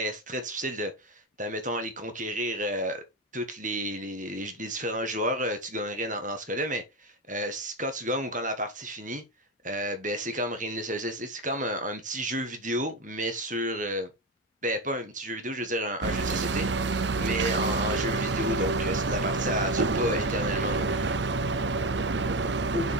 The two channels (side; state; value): both; normal; correlation 0.16